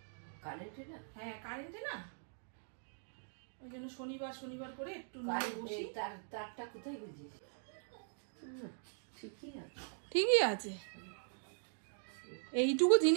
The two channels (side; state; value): left; silent; digital silence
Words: কারেন্টে না? হ্যাঁ কারেন্টে না, ওই জন্য শনিবার শনিবার করে একটু নিয়ে বসি। তারটা কোথায় বুঝিস? ঠিকই আছে। এইটুকু